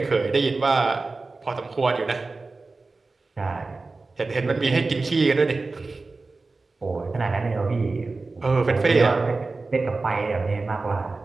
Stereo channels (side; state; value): left; quieter; 3.7 dB